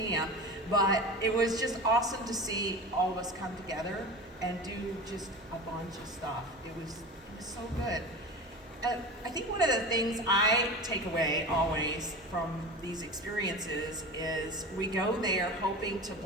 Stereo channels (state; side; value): normal; both; correlation 0.31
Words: But it was just awesome to see all of us come together and do just a bunch of stuff. It was so good. I think one of the things I take away always from these experiences is we go there hoping to